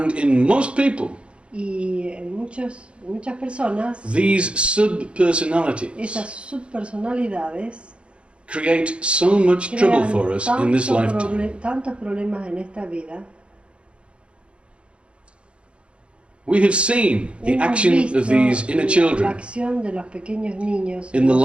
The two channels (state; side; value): late; left; 0.058 ms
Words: in most people, Y en muchas personas, these sub-personalities esas subpersonalidades create so much trouble crean for us in this lifetime. tantos problemas en esta vida. We have seen the Hemos action visto of these inner la children acción de los pequeños niños in the